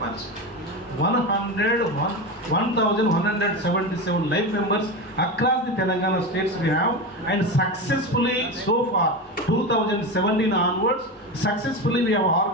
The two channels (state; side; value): normal; both; correlation 0.20